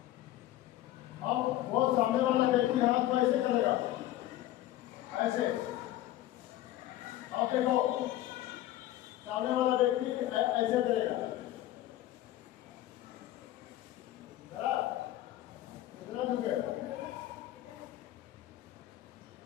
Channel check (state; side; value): quieter; right; 14.4 dB